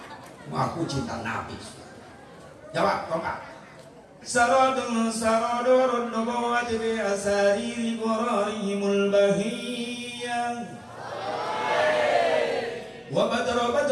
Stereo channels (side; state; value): both; identical; correlation 1.00